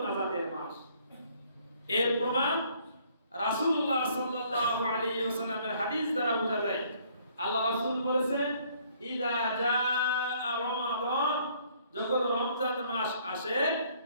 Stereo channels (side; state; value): both; inverted; correlation -0.62